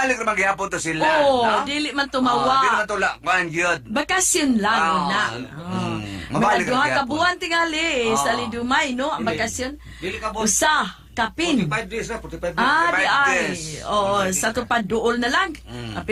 na maghihapon to sila. Oo, no? dili man Di tumawa. naman tula, kuhan yun. Bakasyon lang na. Mabalik Mga duha ang ka gihapon. buwan tingali sa Oo. Lidumay, no? Ang bakasyon. Dili ka, boss. Usa, kapin. 45 days na, 45 days. Ah, di 45 ay. days. Oo, sa tupad duol na lang.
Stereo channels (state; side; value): identical; both; correlation 1.00